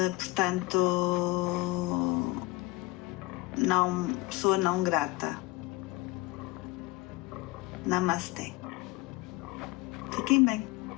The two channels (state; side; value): quieter; right; 21.2 dB